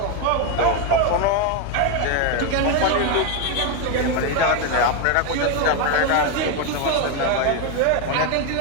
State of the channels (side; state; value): both; different; correlation 0.02